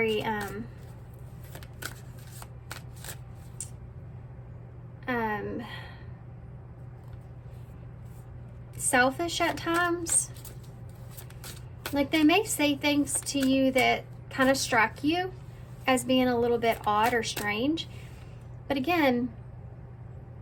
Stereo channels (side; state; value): both; identical; correlation 1.00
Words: selfish at times. Like they may say things to you that kind of strike you as being a little bit odd or strange. But again,